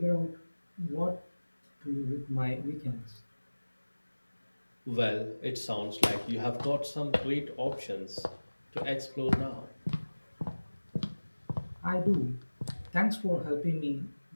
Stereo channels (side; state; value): both; inverted; correlation -1.00